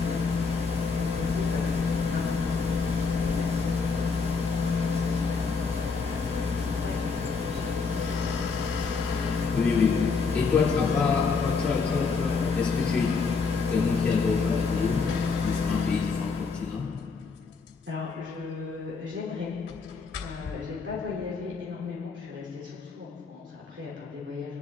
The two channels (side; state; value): right; quieter; 4.9 dB